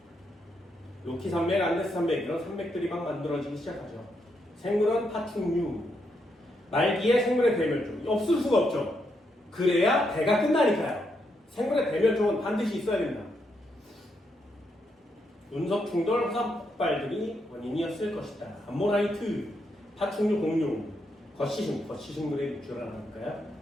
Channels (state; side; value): normal; both; correlation 0.79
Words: 로키 산맥, 안데스 산맥 이런 산맥들이 막 만들어지기 시작하죠. 생물은 파충류. 말기에 생물의 대멸종 없을 수가 없죠. 그래야 대가 끝나니까요. 생물의 대멸종은 반드시 있어야 됩니다. 운석 충돌, 화산 폭발들이 원인이었을 것이다. 암모나이트, 파충류 공룡, 거시식물의 밑줄을 하나 볼까요?